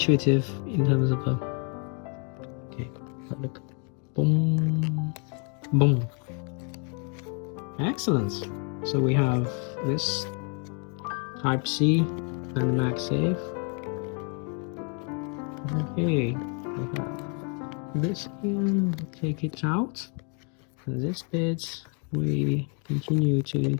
in terms of okay, look, boom, boom, excellent. So we have this Type C and MagSafe. Okay, we have this here, take it out, and this bit we continue to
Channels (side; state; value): right; quieter; 38.7 dB